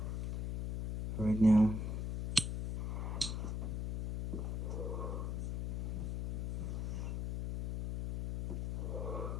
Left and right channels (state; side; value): noise; left; hum, 2 dB below the sound